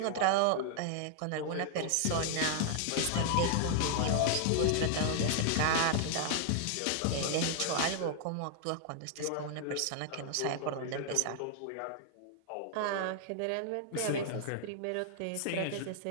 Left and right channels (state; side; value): different; both; correlation 0.00